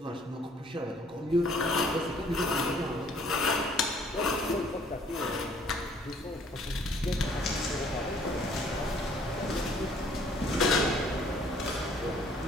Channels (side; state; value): both; normal; correlation 0.59